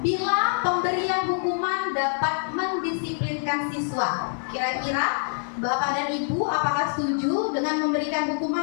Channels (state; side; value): silent; right; digital silence